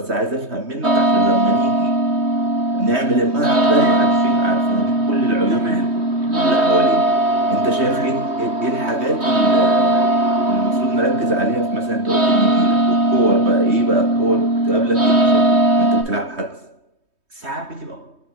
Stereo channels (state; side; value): late; left; 3.2 ms